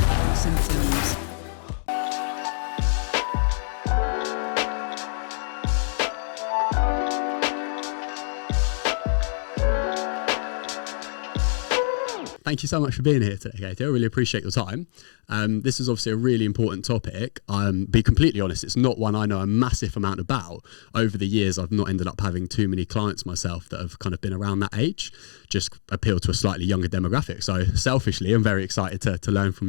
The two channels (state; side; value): silent; right; digital silence